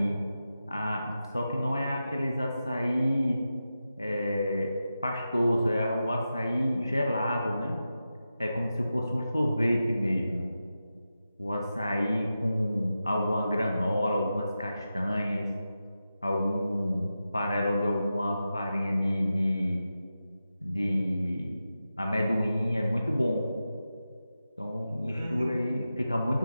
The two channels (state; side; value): inverted; both; correlation -0.91